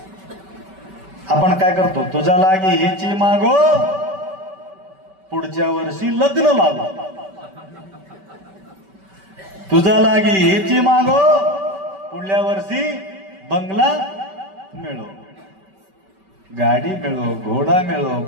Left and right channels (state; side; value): late; left; 5.2 ms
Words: आपण काय करतो, तुझा लागे हेची मागो पुढच्या वर्षी लग्न लागो, तुझा लागे हेची मागो पुढल्या वर्षी बंगला मिळो, गाडी मिळो, घोडा मिळो,